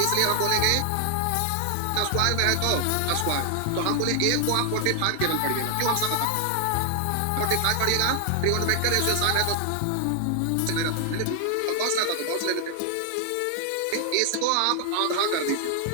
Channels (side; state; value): both; different; correlation 0.00